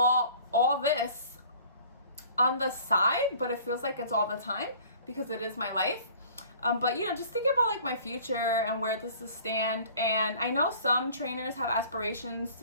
this on the side, but it feels like it's all the time because it is my life. But you know, just thinking about like my future and where this is stand. And I know some trainers have aspirations to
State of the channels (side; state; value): both; inverted; correlation -0.50